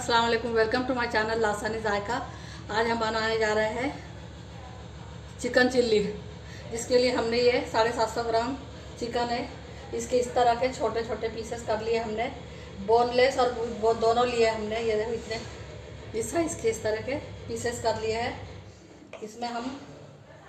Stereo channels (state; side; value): identical; both; correlation 1.00